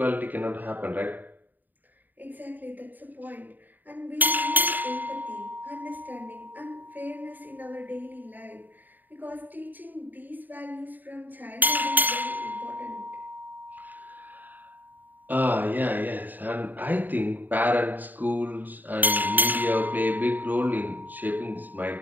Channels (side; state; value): left; late; 0.087 ms